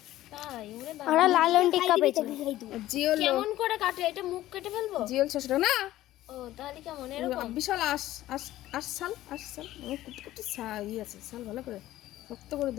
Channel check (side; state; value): right; quieter; 14.9 dB